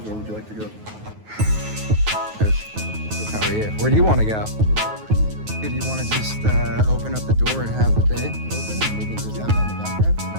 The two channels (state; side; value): late; left; 9.4 ms